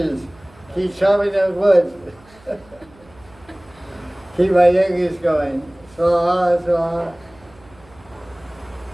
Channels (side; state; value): right; noise; hum, 27 dB below the sound